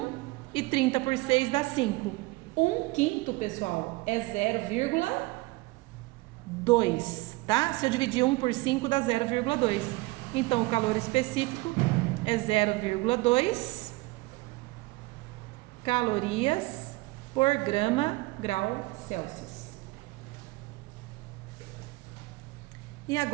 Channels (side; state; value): left; quieter; 22.5 dB